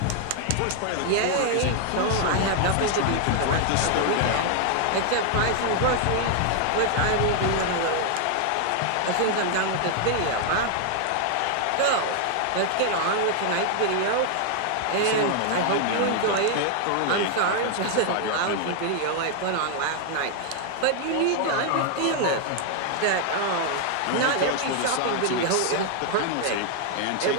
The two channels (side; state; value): both; different; correlation 0.00